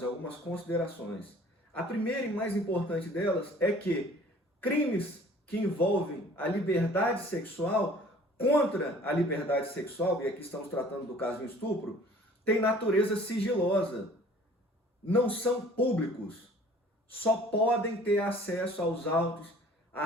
algumas considerações. A primeira e mais importante delas é que crimes que envolvem a liberdade sexual contra a liberdade sexual, e aqui estamos tratando do caso de estupro, tem natureza sigilosa, não são públicos, só podem ter acesso aos autos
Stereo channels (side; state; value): both; normal; correlation 0.51